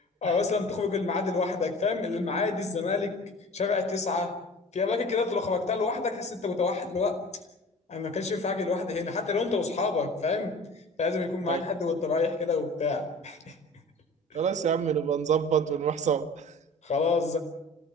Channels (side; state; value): both; normal; correlation 0.41